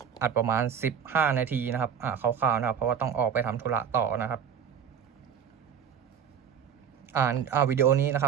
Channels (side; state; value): left; quieter; 8.0 dB